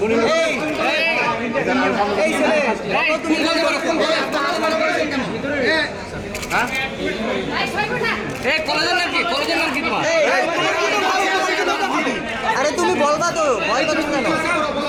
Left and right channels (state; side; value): identical; both; correlation 1.00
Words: এই এই ছেলে বলো তুমি কোন কলেজে? এই কলেজের নাম কি? কলেজের নাম কি তোমার? আরে তুমি বলবা তো, ভয় পাচ্ছ কেন?